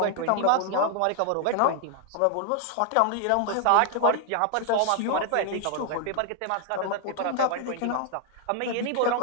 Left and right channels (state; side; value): different; both; correlation 0.00